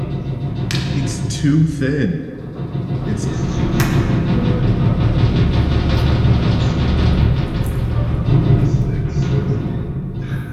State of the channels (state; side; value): identical; both; correlation 1.00